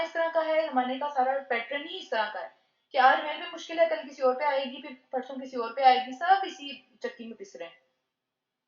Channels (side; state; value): both; identical; correlation 1.00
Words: طرح کا ہے، زمانے کا سارا پیٹرن ہی اس طرح کا ہے کہ آج میرے پہ مشکل ہے، کل کسی اور پہ آئے گی، پھر پرسوں کسی اور پہ آئے گی، سب اسی چکی میں پس رہے ہیں.